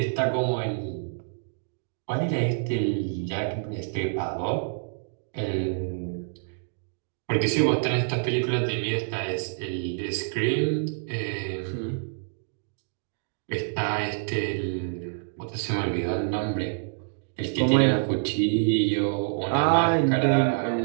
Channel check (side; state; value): left; silent; digital silence